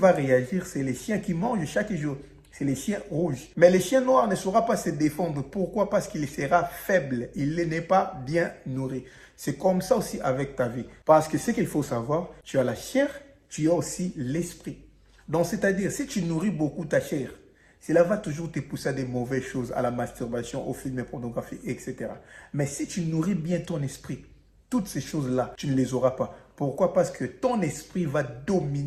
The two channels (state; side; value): identical; both; correlation 1.00